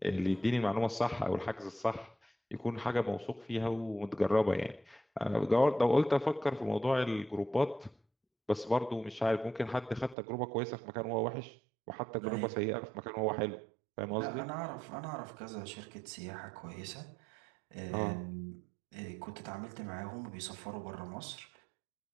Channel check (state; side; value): drops out; left; at 10.2 s